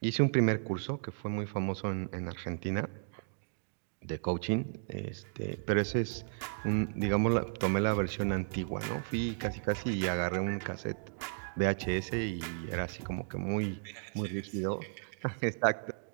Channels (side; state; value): left; silent; digital silence